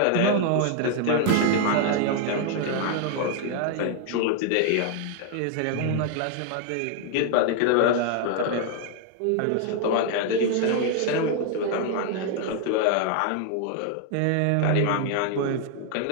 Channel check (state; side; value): different; both; correlation 0.00